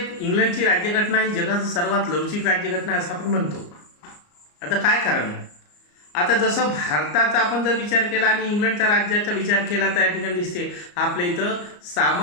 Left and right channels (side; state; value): right; late; 34 ms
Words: राज्यघटना ही जगात सर्वात लवचिक राज्यघटना असं आपण म्हणतो. आता काय कारण? आता जसं भारताचा आपण जर विचार केला आणि इंग्लंडच्या राज्याचा विचार केला तर या ठिकाणी दिसते आपल्या इथं